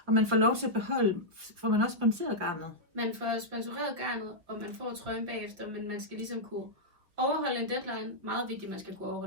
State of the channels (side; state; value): left; late; 5.7 ms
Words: Og man får lov til at beholde, får man også sponsoreret garnet. Man får sponsoreret garnet, og man får trøjen bagefter, men man skal ligesom kunne overholde en deadline. Meget vigtigt, man skal kunne